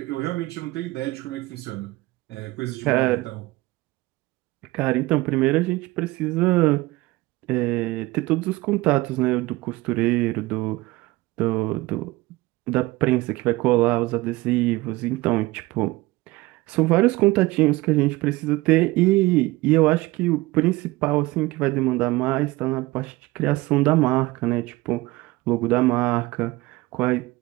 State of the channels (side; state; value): left; quieter; 20.3 dB